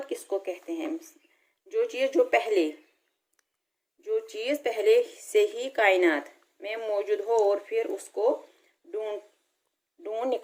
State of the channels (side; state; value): both; identical; correlation 1.00